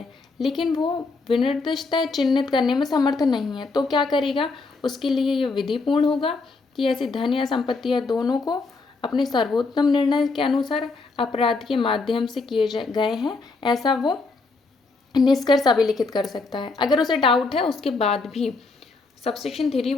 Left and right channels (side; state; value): right; quieter; 3.9 dB